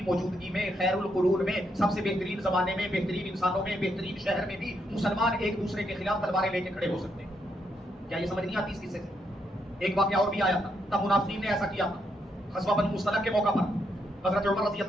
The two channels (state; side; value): normal; both; correlation 0.78